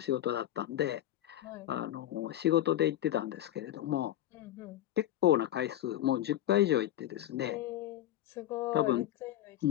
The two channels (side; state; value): right; quieter; 13.0 dB